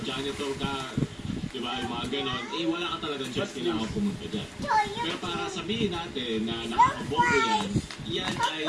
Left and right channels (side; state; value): both; identical; correlation 1.00